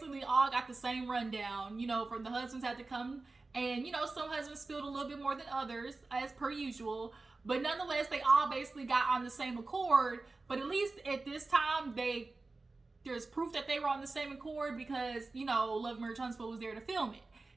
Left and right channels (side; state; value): left; quieter; 3.5 dB